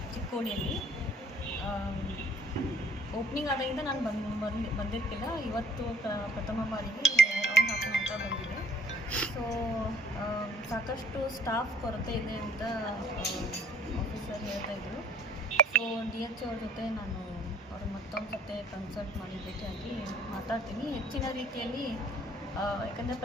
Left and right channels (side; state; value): both; normal; correlation 0.57